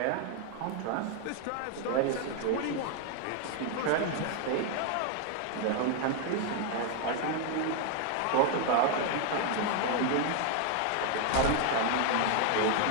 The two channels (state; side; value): different; both; correlation 0.00